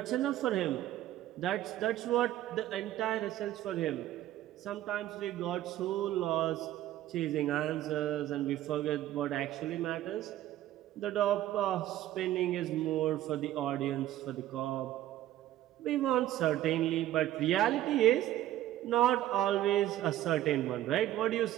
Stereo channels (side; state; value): left; quieter; 13.6 dB